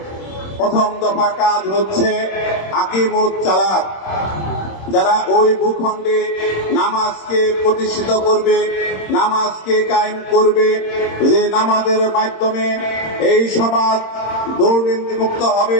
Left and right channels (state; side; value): late; right; 26 ms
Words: প্রথম দফা কাজ হচ্ছে আকিমুত সালাত, যারা ওই ভূখণ্ডে নামাজকে প্রতিষ্ঠিত করবে, নামাজকে কায়েম করবে, যে নামাজের মাধ্যমে এই সমাজ দুর্নীতি মুক্ত